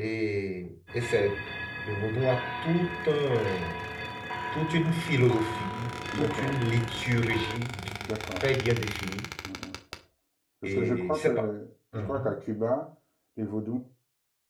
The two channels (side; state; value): both; identical; correlation 1.00